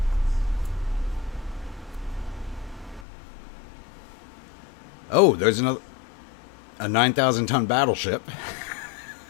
Oh, there's a 9,000-ton battleship.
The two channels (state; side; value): drops out; right; at 3.1 s